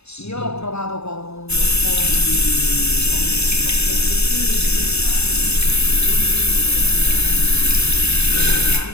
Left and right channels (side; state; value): right; late; 0.79 ms